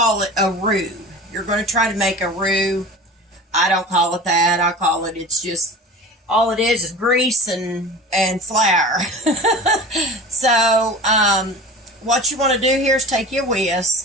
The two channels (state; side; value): normal; both; correlation 0.35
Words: it a roux. You're going to try to make a roux. I don't call it that. I call it, it's just, all it is grease and flour. So, what you want to do here is take your